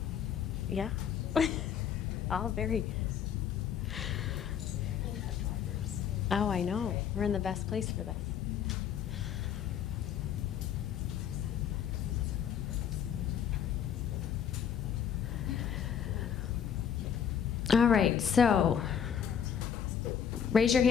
Yeah. All very. Oh, I know. We're in the best place for this. All right, so raise your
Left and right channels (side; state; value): right; quieter; 8.3 dB